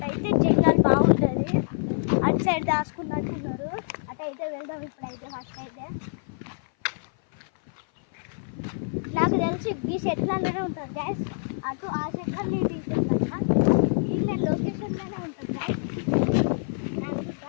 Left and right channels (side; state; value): right; silent; 58 dB below the other